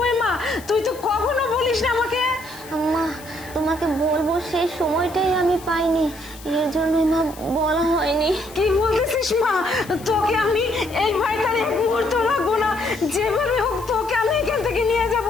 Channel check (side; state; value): left; noise; hiss, 19 dB below the sound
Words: মা, তুই তো কখনো বলিস না আমাকে। মা তোমাকে বলবো সেই সময়টাই আমি পাইনি, এর জন্যই মা বলা হয়নি। কি বলতেছিস মা? তোকে আমি এই বাড়িতে এক মুহূর্ত রাখবো না, যেভাবে হোক তোকে আমি এখান থেকে নিয়ে যাব।